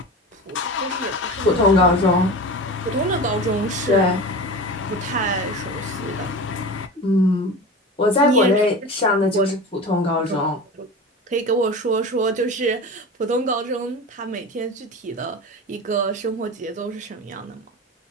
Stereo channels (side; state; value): both; normal; correlation 0.30